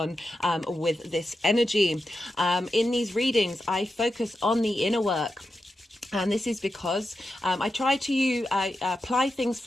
with this energy. In these readings, I focus on the inner work. And this is because I try to apply things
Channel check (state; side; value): normal; both; correlation 0.89